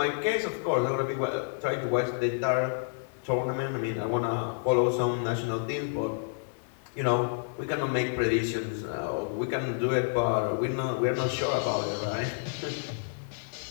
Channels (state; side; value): silent; right; 58 dB below the other